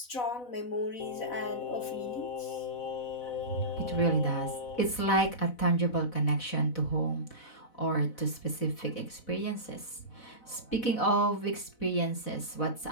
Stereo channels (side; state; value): right; late; 4.0 ms